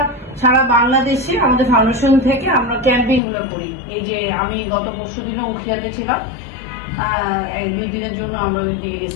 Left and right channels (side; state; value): right; drops out; at 3.2 s